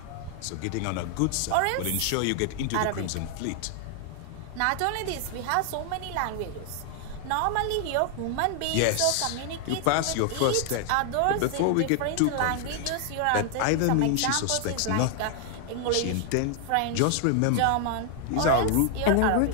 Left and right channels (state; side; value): different; both; correlation 0.00